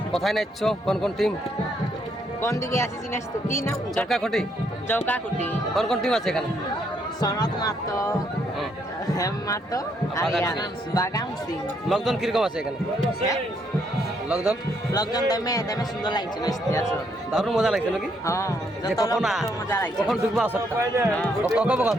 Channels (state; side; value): normal; both; correlation 0.73